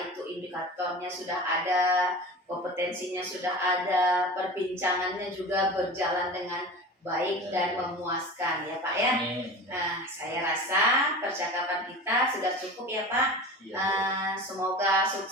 itu indikatornya sudah ada, kompetensinya sudah ada, perbincangannya juga berjalan dengan baik dan memuaskan ya Pak ya. Nah, saya rasa percakapan kita sudah cukup ya Pak. Semoga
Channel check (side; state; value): both; normal; correlation 0.33